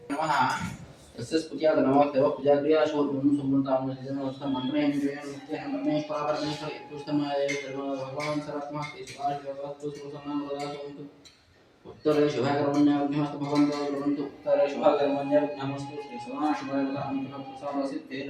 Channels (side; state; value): both; identical; correlation 1.00